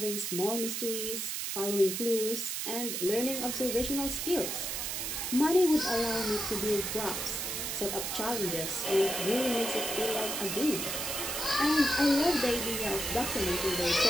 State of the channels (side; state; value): right; noise; hiss, 3 dB below the sound